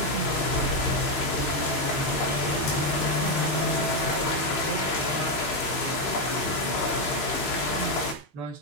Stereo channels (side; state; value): right; late; 6.5 ms